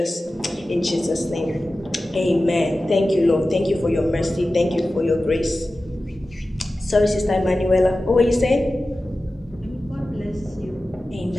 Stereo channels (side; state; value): both; normal; correlation 0.95